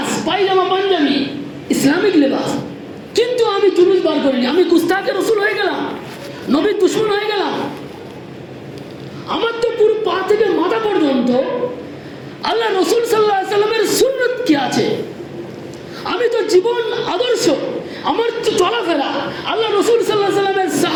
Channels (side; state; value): both; identical; correlation 1.00